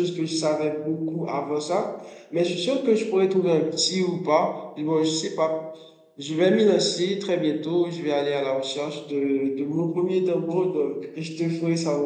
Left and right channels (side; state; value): both; identical; correlation 1.00